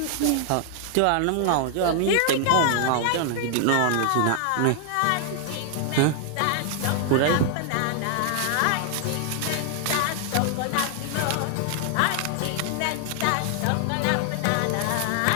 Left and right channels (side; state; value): both; different; correlation 0.00